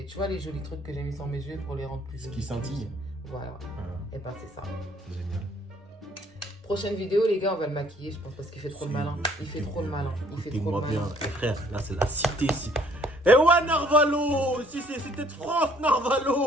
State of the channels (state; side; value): normal; both; correlation 0.61